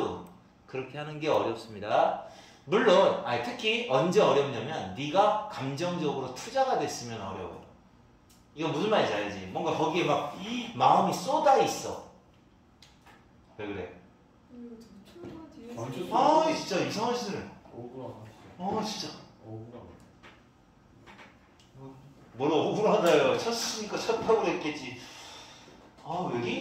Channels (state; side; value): identical; both; correlation 1.00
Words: 그렇게 하는 게 어렵습니다. 물론 특히 언제 어렵냐면 네가 감정적으로 투자가 됐으면 어려워요. 이거 무슨 말인지 알지? 뭔가 거기에 막 마음이 쏟아 있어. 왜 그래? 진짜 이상한 짓을. 진짜. 뭘 억울하다요. 쳤으니까 쳤다고 그랬겠지.